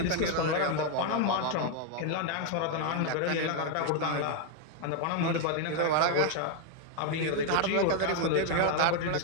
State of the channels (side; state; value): both; different; correlation 0.00